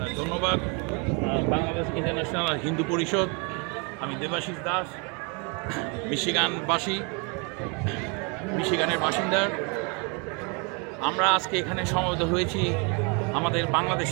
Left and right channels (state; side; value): quieter; left; 33.2 dB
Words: ধন্যবাদ বাংলাদেশ ইন্টারন্যাশনাল হিন্দু পরিষদ। আমি দেবাশিস দাস, মিশিগানের বাসিন্দা। আমরা আজকে এখানে সমবেত হয়েছি আমাদের